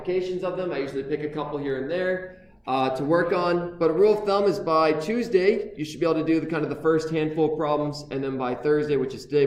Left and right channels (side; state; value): both; identical; correlation 1.00